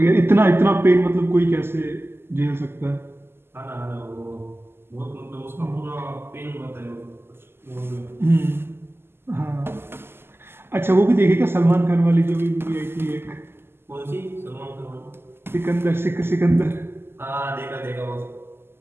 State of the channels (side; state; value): left; late; 0.12 ms